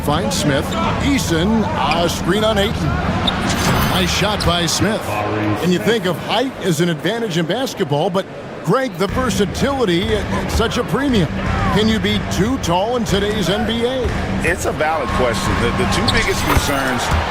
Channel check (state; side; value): identical; both; correlation 1.00